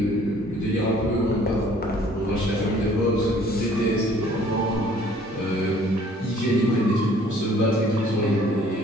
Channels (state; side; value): normal; both; correlation 0.56